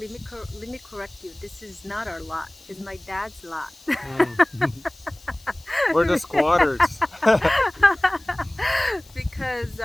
let me correct you. This is not our lot. It's my dad's lot. Mm. We're the squatters. Because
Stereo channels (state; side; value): noise; left; hiss, 25 dB below the sound